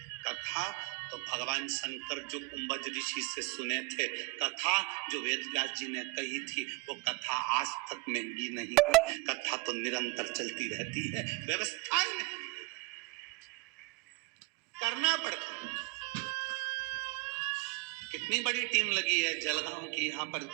कथा तो भगवान शंकर जो कुंभज ऋषि से सुने थे, कथा जो वेदव्यास जी ने कही थी, वो कथा आज तक महंगी नहीं है। कथा तो निरंतर चलती रहती है, व्यवस्थाएं नहीं करना पड़ता है। कितनी बड़ी टीम लगी है जलगांव की, यहाँ पर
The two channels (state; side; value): quieter; left; 25.9 dB